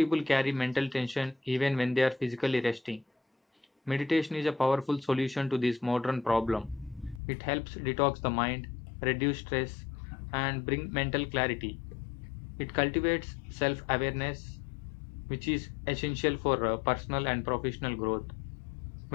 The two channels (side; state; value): right; drops out; at 7.2 s